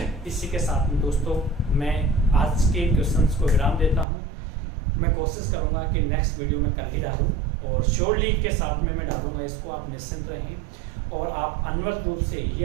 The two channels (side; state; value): left; drops out; at 4.0 s